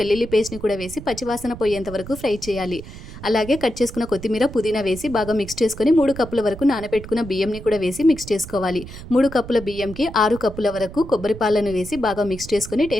పేస్ట్‌ని కూడా వేసి పచ్చివాసన పోయేంత వరకు ఫ్రై చేయాలి. అలాగే కట్ చేసుకున్న కొత్తిమీర, పుదీనా వేసి బాగా మిక్స్ చేసుకొని 3 కప్పుల వరకు నానబెట్టుకున్న బియ్యంని కూడా వేసి మిక్స్ చేసుకోవాలి. 3 కప్పుల బియ్యంకి 6 కప్పుల వరకు కొబ్బరి పాలను వేసి బాగా మిక్స్ చేసుకొని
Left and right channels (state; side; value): noise; right; rumble, 13 dB below the sound